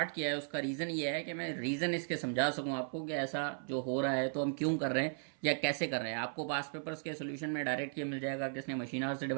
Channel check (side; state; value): left; silent; 54 dB below the other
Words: किया है उसका रीज़न ये है कि मैं रीज़न इसके समझा सकूं आपको कि ऐसा जो हो रहा है तो हम क्यों कर रहे हैं या कैसे कर रहे हैं। आपको पास पेपर्स के सोल्यूशन में डायरेक्ट ये मिल जाएगा कि इसने मशीन आवर से